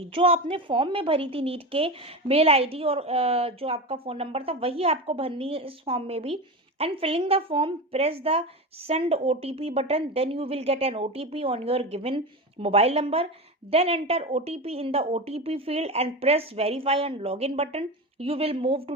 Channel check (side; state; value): both; normal; correlation 0.23